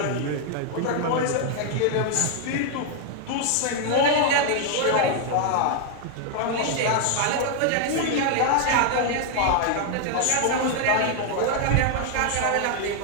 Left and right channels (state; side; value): different; both; correlation 0.00